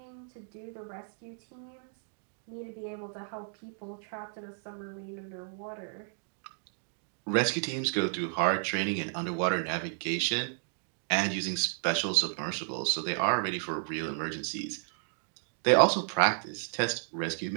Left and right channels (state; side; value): silent; left; digital silence